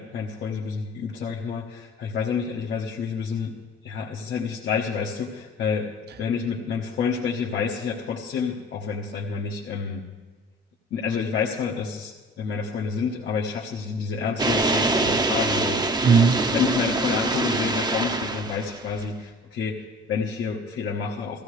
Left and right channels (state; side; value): normal; both; correlation 0.44